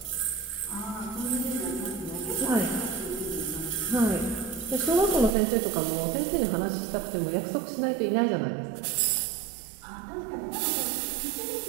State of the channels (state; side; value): drops out; left; at 5.4 s